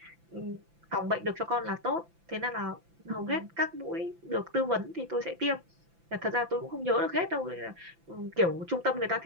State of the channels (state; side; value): late; left; 5.9 ms